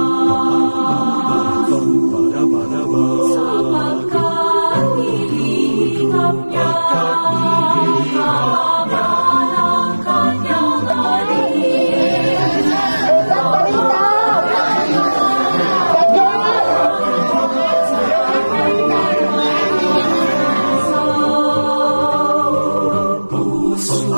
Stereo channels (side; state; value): both; inverted; correlation -1.00